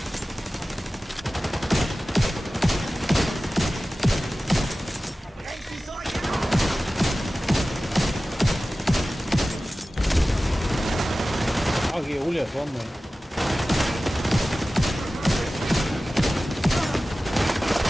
Geole, vor mir.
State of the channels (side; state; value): both; normal; correlation 0.96